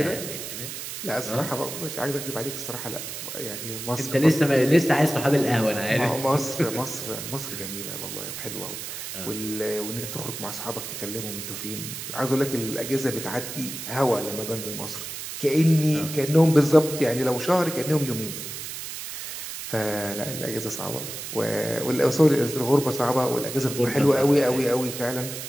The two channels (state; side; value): noise; right; hiss, 8 dB below the sound